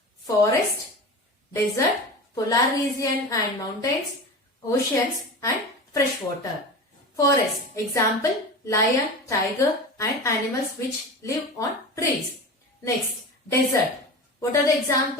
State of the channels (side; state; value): both; normal; correlation 0.30